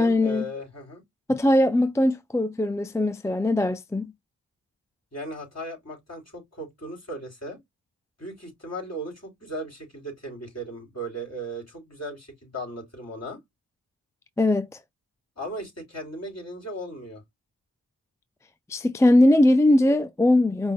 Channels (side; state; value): both; normal; correlation 0.89